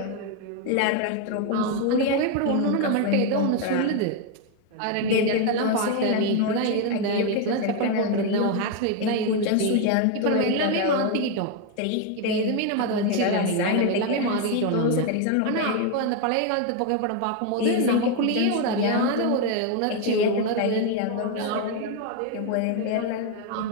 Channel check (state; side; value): different; both; correlation 0.01